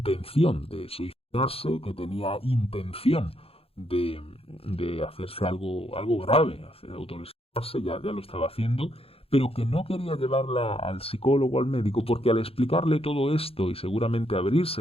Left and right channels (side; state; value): right; late; 0.28 ms